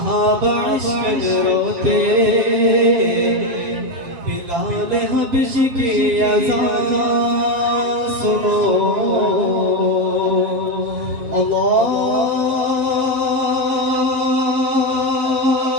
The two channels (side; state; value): left; late; 7.4 ms